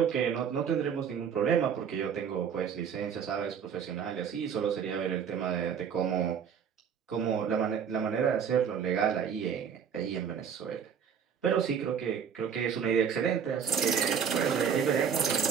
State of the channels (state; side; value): quieter; left; 7.4 dB